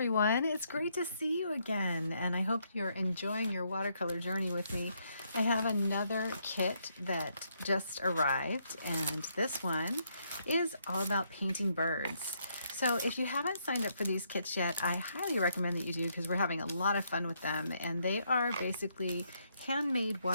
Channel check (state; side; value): inverted; both; correlation -0.75